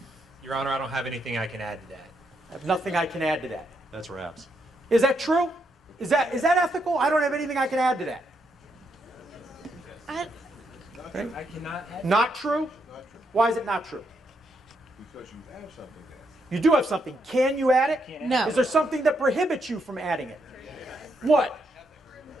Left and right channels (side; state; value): both; normal; correlation 0.78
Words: Your Honor, I don't have anything I can add to that. I have nothing I can add to that. That's Raps. Is that true? Is that ethical? I don't have anything I can add to that. I cannot add. Not true? Why is it not true? Because you have something there. You do have something. Can you add it? No. Is there something that prohibits you from adding it? What?